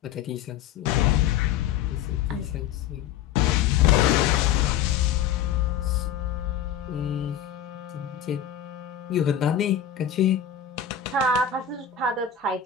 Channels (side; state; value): right; quieter; 9.0 dB